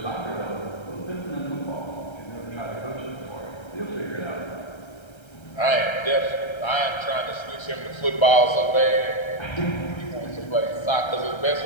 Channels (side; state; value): right; late; 1.3 ms